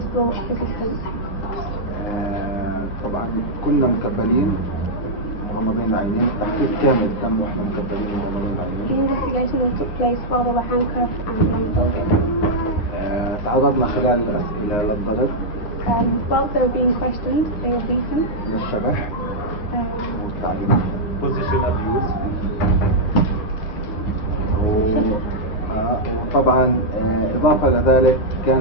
still persistent. طبعا كنا مكبلين مغمضين العينين. التحقيق كامل تم واحنا مكبلين مغمضين The العينين. interrogation took place while they were handcuffed and blindfolded. تعرضنا خلال الأسئلة للضرب، Whilst they were being questioned, they were beaten. للشبح والتعذيب. position abuse. وطبعا إضافة لذلك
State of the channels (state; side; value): late; right; 9.6 ms